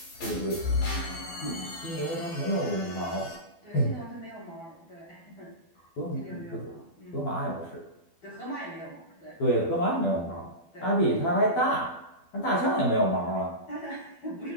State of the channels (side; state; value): right; late; 12 ms